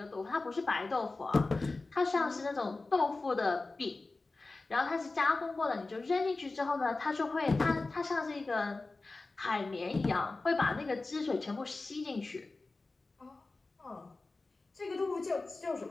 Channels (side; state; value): right; quieter; 3.4 dB